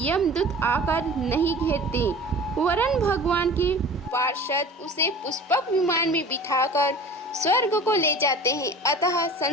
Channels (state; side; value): normal; both; correlation 0.40